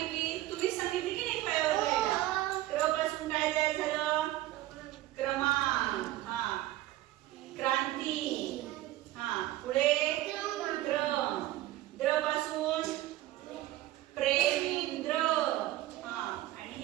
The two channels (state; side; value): quieter; left; 15.5 dB